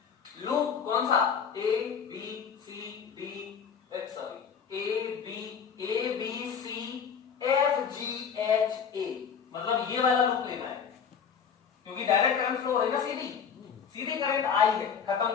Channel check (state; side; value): quieter; right; 6.9 dB